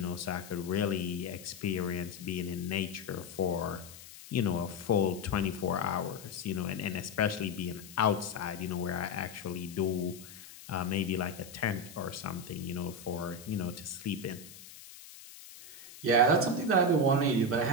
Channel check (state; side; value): noise; left; hiss, 17 dB below the sound